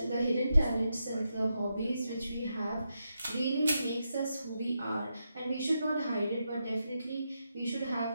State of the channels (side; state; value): both; inverted; correlation -0.85